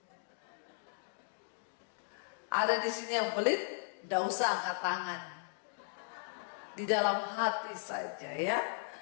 Ada di sini yang pelit, tidak usah angkat tangan. Di dalam hati saja ya.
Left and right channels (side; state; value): right; silent; digital silence